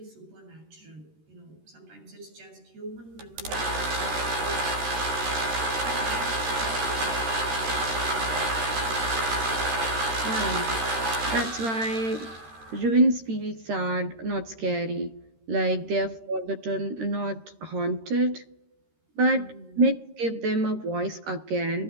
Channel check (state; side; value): late; left; 13 ms